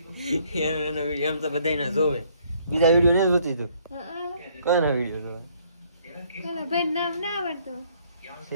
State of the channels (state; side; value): inverted; both; correlation -0.64